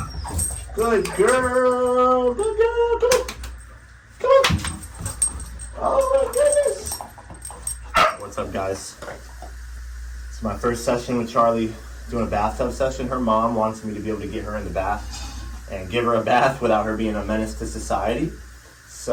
Good girl. Good girl. Come on. Come on. Oh my goodness. What's up, guys? It's my first session with Charlie doing a bathtub session. Her mom wants me to be able to get her in the bath and give her a bath without her being a menace to society.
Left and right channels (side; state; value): both; identical; correlation 1.00